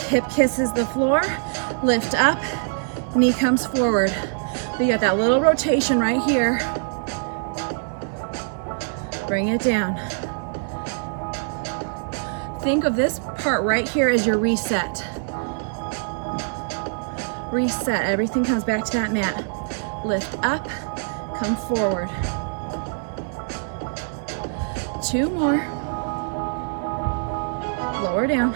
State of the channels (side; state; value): left; silent; digital silence